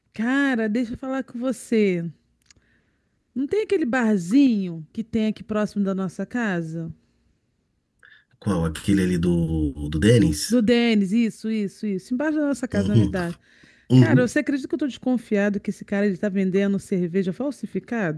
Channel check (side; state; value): both; identical; correlation 1.00